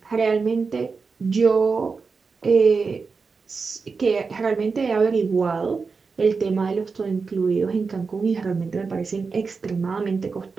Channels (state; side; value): quieter; left; 4.8 dB